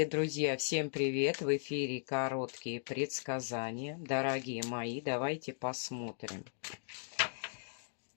друзья, всем привет! В эфире короткие предсказания. Дорогие мои, давайте посмотрим.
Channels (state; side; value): silent; right; digital silence